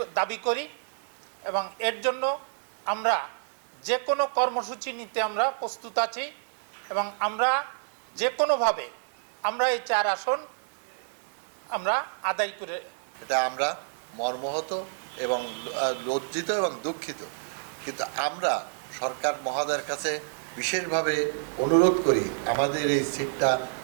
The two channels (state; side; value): silent; left; 59 dB below the other